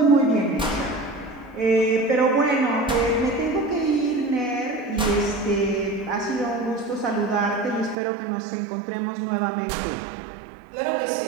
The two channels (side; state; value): left; drops out; at 8.0 s